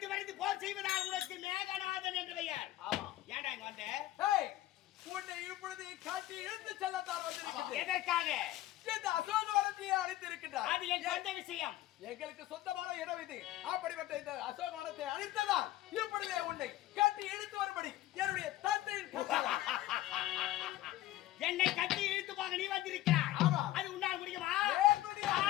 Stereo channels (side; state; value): right; quieter; 15.1 dB